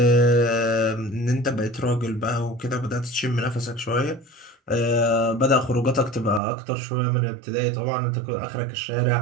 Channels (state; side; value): drops out; left; at 6.4 s